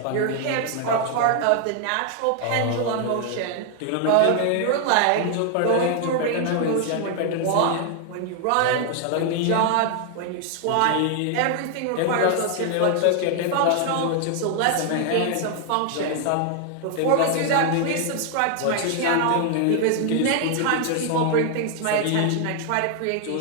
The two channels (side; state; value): both; different; correlation 0.00